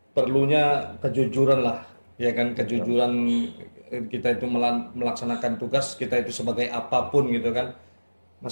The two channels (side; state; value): both; inverted; correlation -1.00